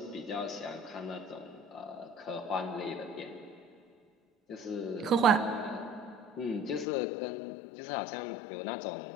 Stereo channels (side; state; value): right; drops out; at 6.9 s